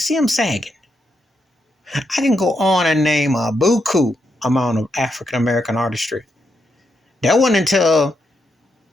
them sagging? I can go on and name a buku amount of African American artistry. That wasn't until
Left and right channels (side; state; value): both; normal; correlation 0.82